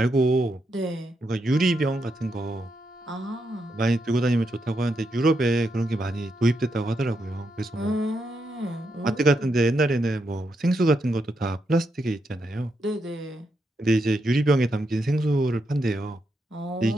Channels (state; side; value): normal; both; correlation 0.82